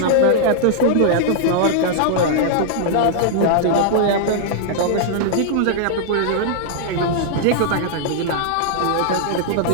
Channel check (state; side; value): different; both; correlation -0.01